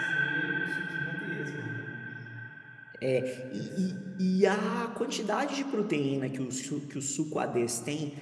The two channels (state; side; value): identical; both; correlation 1.00